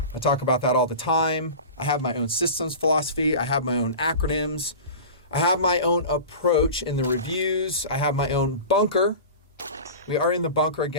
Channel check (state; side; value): inverted; both; correlation -0.33